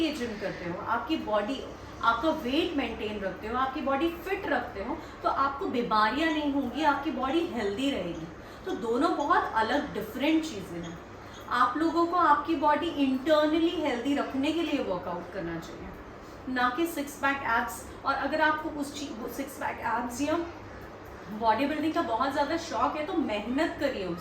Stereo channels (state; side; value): identical; both; correlation 1.00